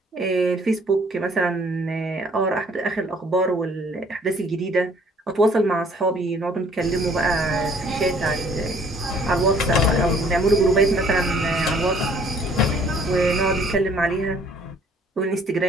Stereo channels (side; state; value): both; normal; correlation 0.59